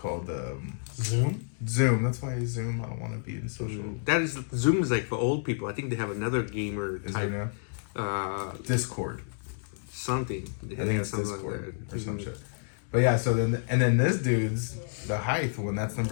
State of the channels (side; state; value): right; silent; digital silence